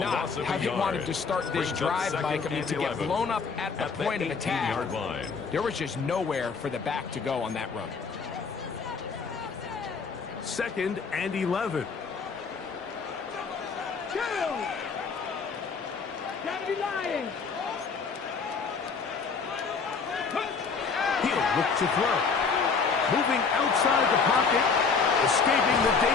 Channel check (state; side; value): quieter; right; 5.2 dB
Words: how he wanted to start this drive, Mike. I mean, to get blown up at the point of attack, there was just nowhere for the back to go on that run. 2nd and 11. Kill! Gotta be lying! He'll look to throw. Moving outside the pocket. Escaping the